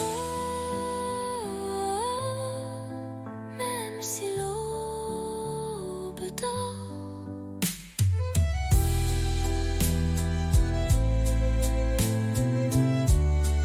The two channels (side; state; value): both; identical; correlation 1.00